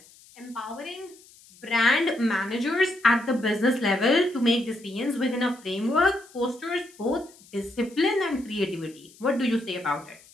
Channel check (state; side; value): noise; left; hiss, 25 dB below the sound